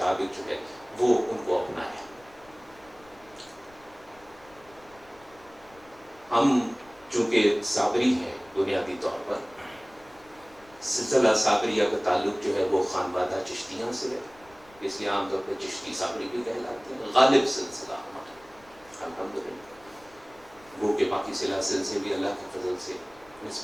جو ہے وہ ان کو اپنایا. ہم چونکہ صابری ہیں بنیادی طور پر، سلسلہ صابریہ کا تعلق جو ہے وہ خانوادہ چشتیاں سے ہے، اس لیے عام طور پہ چشتی صابری بھی کہلاتے ہیں. غالب سلسلہ ہمارا الحمدللہ، وہ کہ باقی سلاسل سے بھی اللہ کے فضل سے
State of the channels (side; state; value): left; noise; rumble, 27 dB below the sound